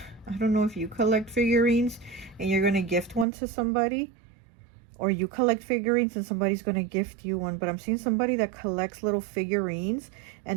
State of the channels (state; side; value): drops out; left; at 3.2 s